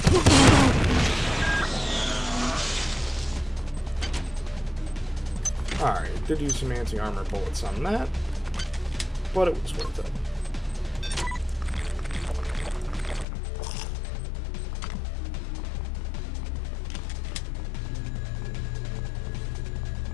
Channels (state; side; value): drops out; right; at 13.2 s